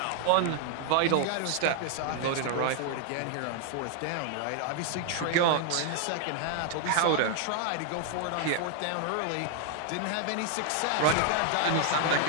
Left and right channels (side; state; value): both; different; correlation 0.00